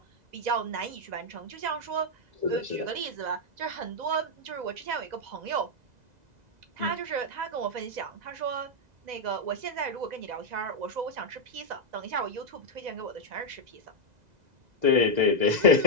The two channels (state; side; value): late; left; 2.0 ms